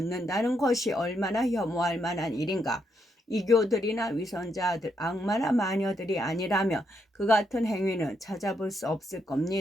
것이 얼마나 혐오할 만한 일인가. 이교들이나 위선자들, 악마나 마녀들이 아니라면 그 같은 행위는 찾아볼 수 없을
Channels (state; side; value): normal; both; correlation 0.78